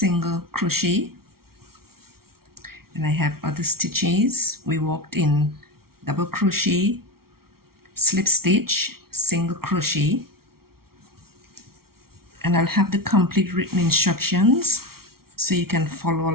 crochet, and I have other stitches. We worked in double crochet, slip stitch, single crochet, and I'll have the complete written instructions so you can follow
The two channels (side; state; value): left; late; 0.94 ms